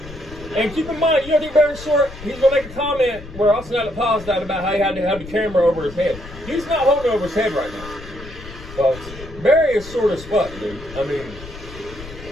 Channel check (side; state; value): left; noise; rumble, 15 dB below the sound